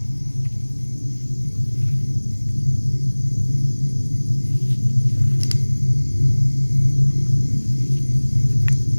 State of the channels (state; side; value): inverted; both; correlation -1.00